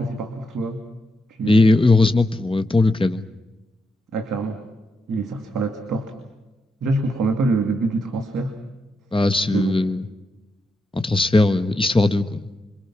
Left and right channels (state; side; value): normal; both; correlation 0.84